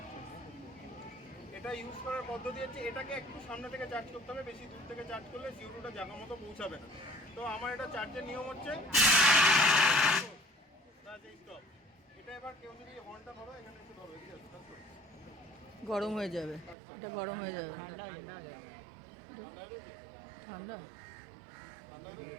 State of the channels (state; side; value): drops out; left; at 16.8 s